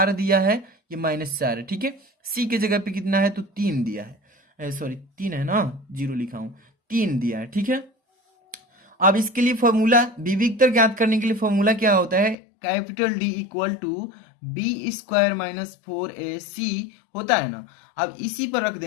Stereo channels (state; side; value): drops out; right; at 12.4 s